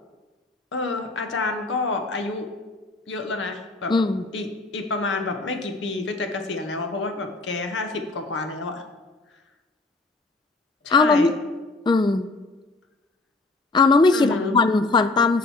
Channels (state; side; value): quieter; right; 3.2 dB